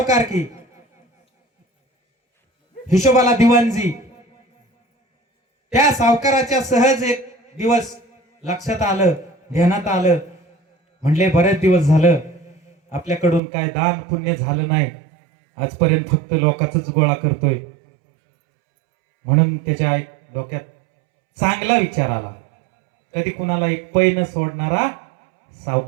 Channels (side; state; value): left; drops out; at 13.4 s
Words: हिशोबाला दिवाणजी. त्या सावकाराच्या सहज एक दिवस लक्षात आलं, ध्यानात आलं, म्हणले बरेच दिवस झालं आपल्याकडून काय दान पुण्य झालं नाही, आजपर्यंत फक्त लोकांचाच गोळा करतोय. म्हणून त्याच्या एक डोक्यात चांगला विचार आला, कधी कुणाला एक पै न सोडणारा